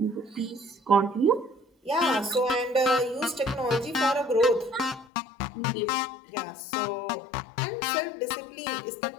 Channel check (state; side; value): drops out; right; at 5.1 s